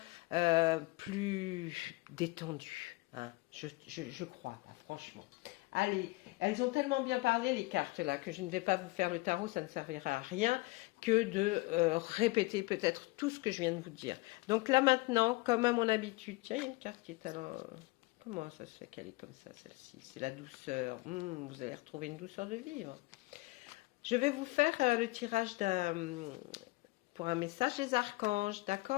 plus détendu. Hein. Je crois, là, franchement. Allez, elles ont tellement bien parlé, les cartes, là, que je ne vais pas vous faire le tarot, ça ne servira à rien que de répéter peut-être tout ce que je viens de vous dire. Donc là, maintenant, comme à mon habitude, tiens, il y a une carte qui est alors... Comment ça se fait qu'elle est comme ça, celle-ci? C'est la douceur. Vous allez retrouver une douceur de vivre. Je vais vous faire le tirage pour un message des archanges,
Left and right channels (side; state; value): right; quieter; 22.9 dB